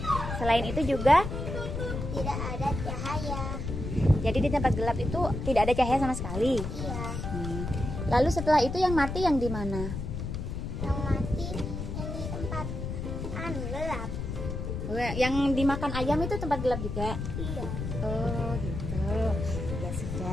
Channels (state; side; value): noise; left; rumble, 5 dB below the sound